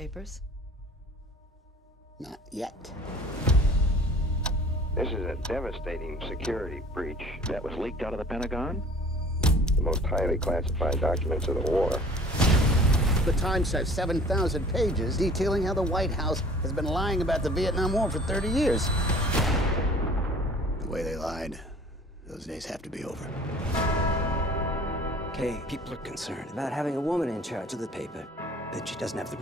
Not yet. This is a devastating security breach that was leaked out of the Pentagon. The most highly classified documents of the war. The Times has 7,000 pages detailing how the White House has been lying about the Vietnam War for 30 years. The way they lied, those days have to be over. Okay, people are concerned about having a woman in charge of the paper, that she doesn't have the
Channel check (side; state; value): both; normal; correlation 0.49